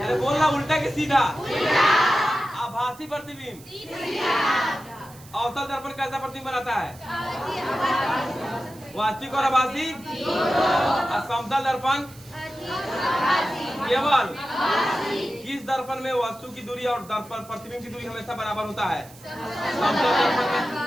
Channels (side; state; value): right; noise; hiss, 22 dB below the sound